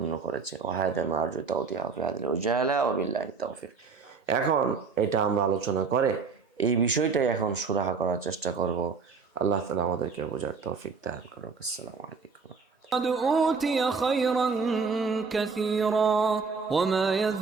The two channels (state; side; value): quieter; left; 5.1 dB